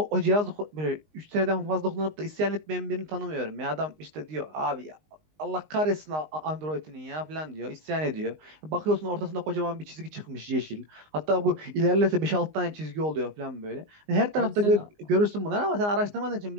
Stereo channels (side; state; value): left; late; 19 ms